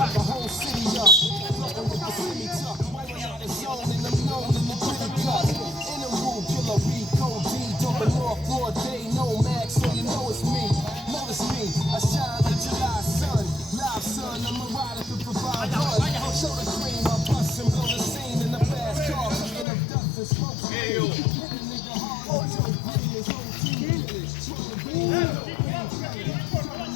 the whole city up, floating with the city tuck. Wiping out the zone and I'm known in the gritty cut. In the room, killer B, Code D, dumping off broad day, no mag, so you know it's me. Notice me, I shine like July sun. Live sun, I'm a rider to provide run. Show the cream, I bust and blow the scene in the fast car. Picking up dust and smoke screen. Hit a nigga hard, Joe Green, his whole team village.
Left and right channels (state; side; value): drops out; right; at 19.7 s